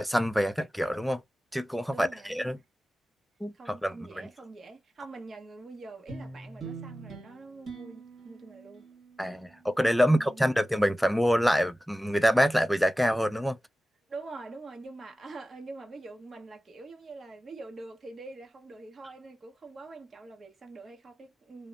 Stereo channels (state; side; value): normal; both; correlation 0.95